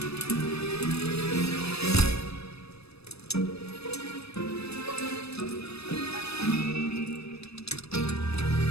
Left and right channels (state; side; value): late; right; 0.79 ms